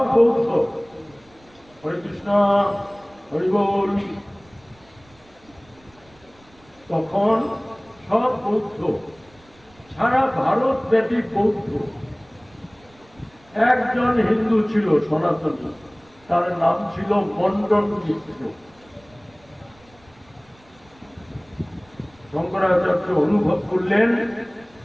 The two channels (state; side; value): noise; right; rumble, 29 dB below the sound